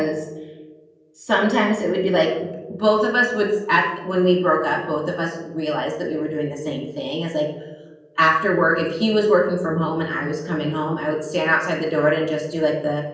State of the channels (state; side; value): identical; both; correlation 1.00